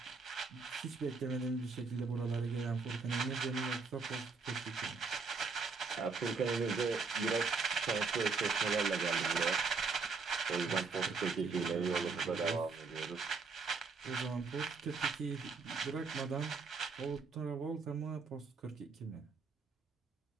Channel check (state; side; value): quieter; left; 4.6 dB